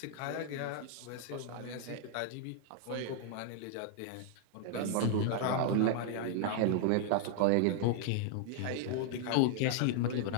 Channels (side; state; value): both; different; correlation -0.01